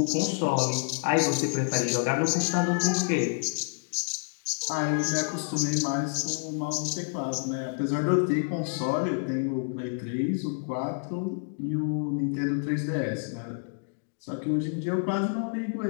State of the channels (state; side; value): silent; right; digital silence